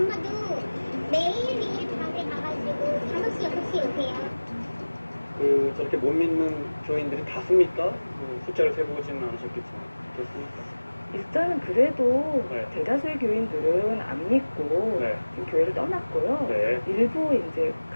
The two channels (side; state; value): both; inverted; correlation -1.00